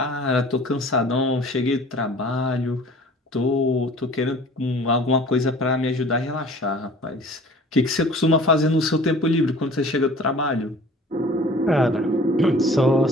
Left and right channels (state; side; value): normal; both; correlation 0.47